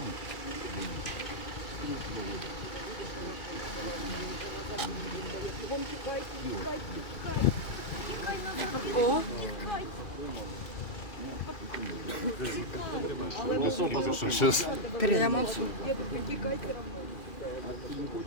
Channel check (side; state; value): right; late; 2.4 ms